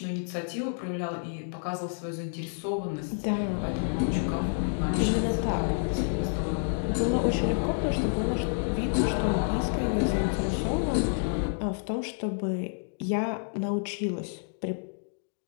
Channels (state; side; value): silent; right; digital silence